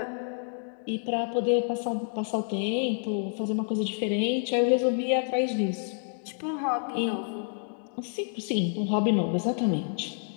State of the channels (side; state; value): right; silent; 59 dB below the other